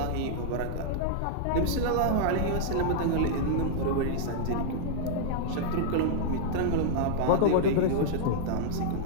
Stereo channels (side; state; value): both; different; correlation -0.01